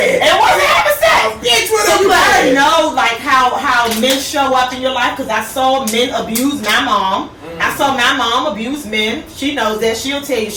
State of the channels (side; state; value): both; identical; correlation 1.00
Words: It wasn't having sex. So you gotta know like how men show up in your life, because I saw men abuse my mom. I saw my mom abuse men. She knows that. She'll tell you.